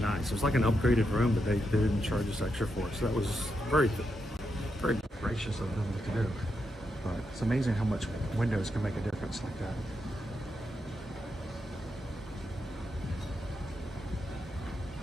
It was like an upgraded room, but they didn't charge us extra for it, so that was very, very gracious of them to do. But it's amazing how much windows can make a difference like that.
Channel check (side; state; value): both; normal; correlation 0.83